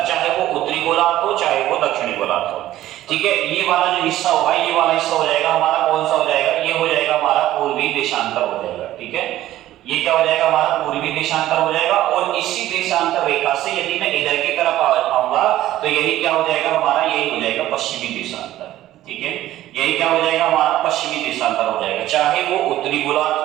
चाहे वो उत्तरी गोलार्ध हो चाहे वो दक्षिणी गोलार्ध हो, ठीक है। ये वाला जो हिस्सा होगा, ये वाला हिस्सा हो जाएगा हमारा कौन सा हो जाएगा, ये हो जाएगा हमारा पूर्वी देशांतर हो जाएगा, ठीक है। ये क्या हो जाएगा हमारा पूर्वी देशांतर हो जाएगा। और इसी देशांतर रेखा से यदि मैं इधर की तरफ आऊंगा तो यही क्या हो जाएगा हमारा, यही हो जाएगा पश्चिमी देशांतर, ठीक है। यही क्या हो जाएगा हमारा पश्चिमी देशांतर हो जाएगा, चाहे वो उत्तरी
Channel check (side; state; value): left; quieter; 14.2 dB